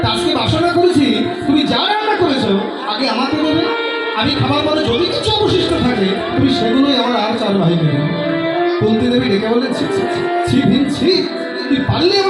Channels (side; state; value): both; identical; correlation 1.00